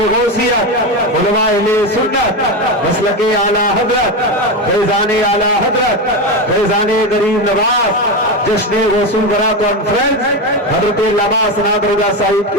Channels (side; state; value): both; normal; correlation 0.15